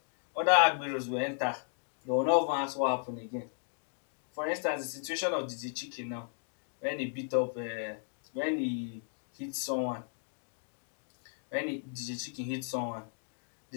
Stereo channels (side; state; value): right; silent; 55 dB below the other